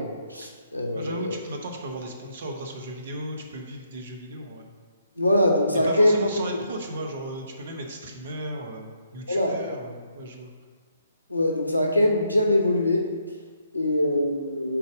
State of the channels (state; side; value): inverted; both; correlation -0.76